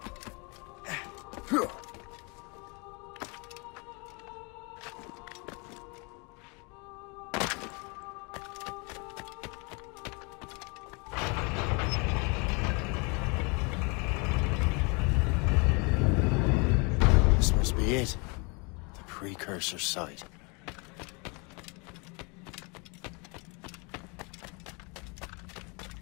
This must be it. The precursor site.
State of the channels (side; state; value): right; quieter; 31.3 dB